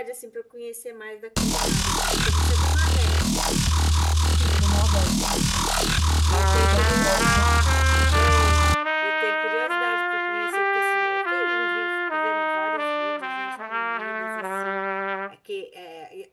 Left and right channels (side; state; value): both; identical; correlation 1.00